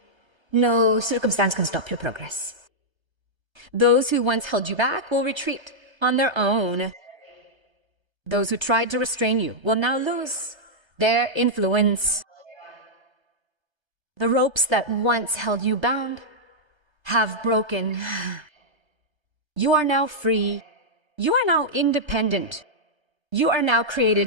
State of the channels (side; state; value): left; late; 1.3 ms